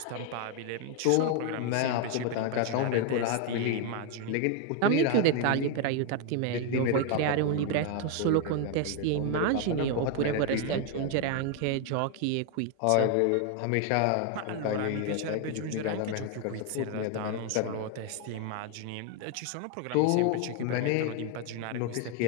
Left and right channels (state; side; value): different; both; correlation 0.01